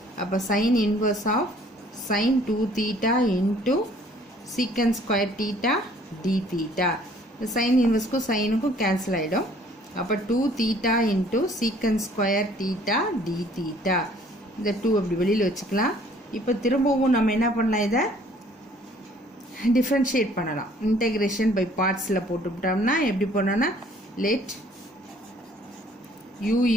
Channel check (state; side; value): normal; both; correlation 0.58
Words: அப்போ sine inverse of sine 2 theta into secant square theta d theta. Sine இன்வர்ஸ்க்கும் சைனுக்கும் கேன்சல் ஆகிடும். அப்போ 2 theta into secant square theta d theta. இந்த 2 அப்படி வெளியில் வச்சுக்கலாம். இப்போ திரும்பவும் நம்ம என்ன பண்ணலாம்? இதை டிஃப்ரென்ஷியேட் பண்ணலாம். இன்டெகிரேஷன் பை பார்ட்ஸில் போட்டுவிட்டோம்னா எப்படி பண்ணோன்னா லெட் u